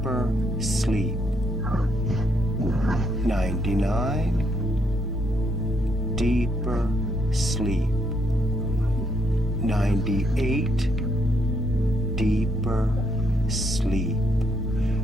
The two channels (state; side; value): normal; both; correlation 0.74